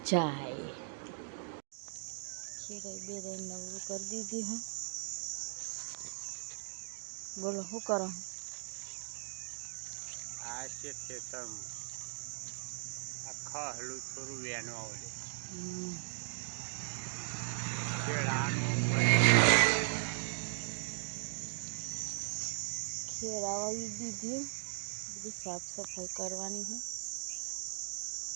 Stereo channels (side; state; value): left; silent; 52 dB below the other